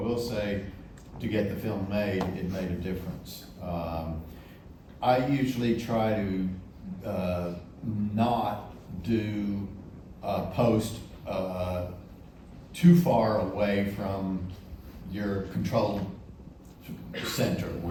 I will say, to get the film made, it made a difference. I usually try to not do post too far away from your control center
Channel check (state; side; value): identical; both; correlation 1.00